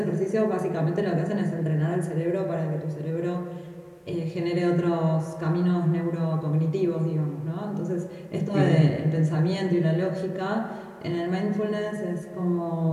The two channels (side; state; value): both; identical; correlation 1.00